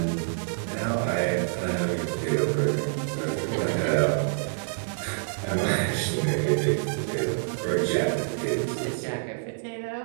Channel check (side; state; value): left; silent; digital silence